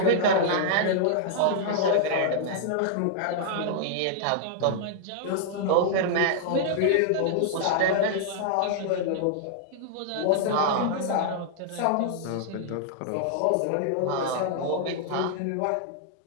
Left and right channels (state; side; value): different; both; correlation -0.01